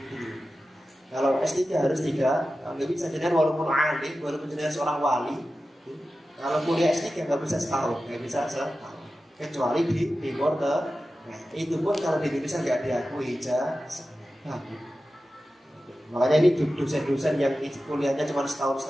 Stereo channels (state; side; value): normal; both; correlation 0.94